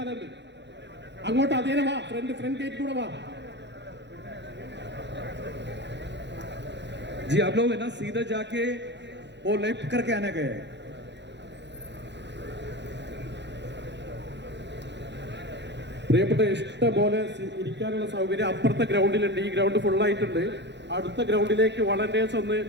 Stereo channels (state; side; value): late; left; 0.51 ms